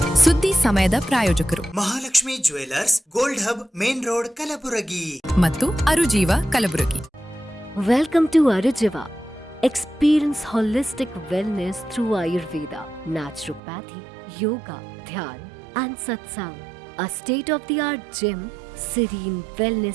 ಸುದ್ದಿ ಸಮಯದ ಪ್ರಾಯೋಜಕರು Mahalakshmi jewellers, gold hub, main road, Kalaburagi ಮತ್ತು ಅರುಜೀವ Kalaburagi. Welcome to Arujiva. Experience holistic wellness through Ayurveda, naturopathy, yoga, dhyan and satsang. A state-of-the-art gym, serene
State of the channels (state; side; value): drops out; left; at 13.6 s